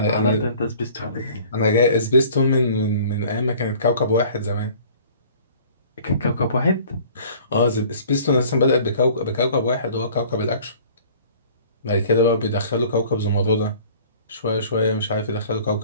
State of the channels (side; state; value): both; inverted; correlation -0.49